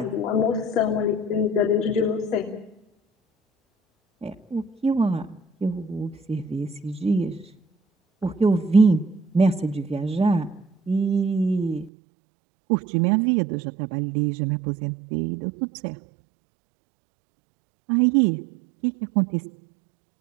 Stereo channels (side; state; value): left; drops out; at 11.9 s